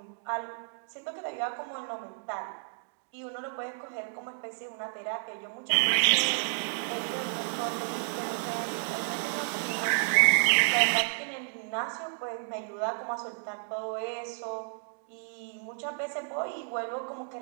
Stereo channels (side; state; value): left; silent; digital silence